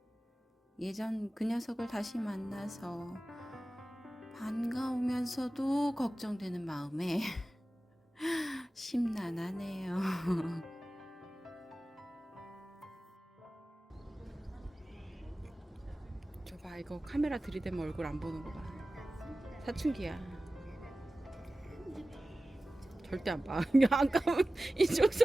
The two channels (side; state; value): both; normal; correlation 0.96